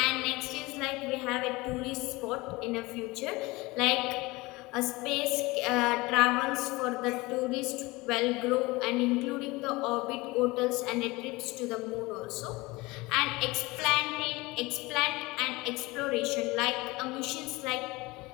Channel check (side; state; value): right; quieter; 22.3 dB